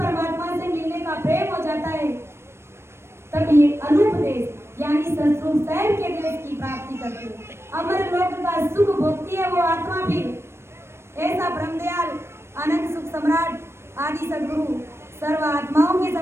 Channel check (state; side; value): late; left; 0.12 ms